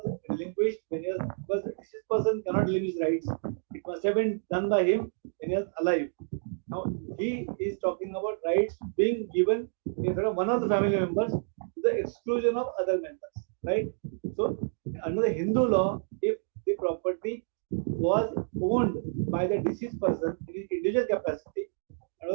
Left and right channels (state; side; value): silent; left; digital silence